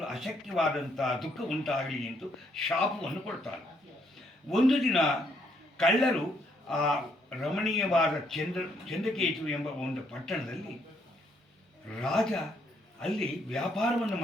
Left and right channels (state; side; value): normal; both; correlation 0.71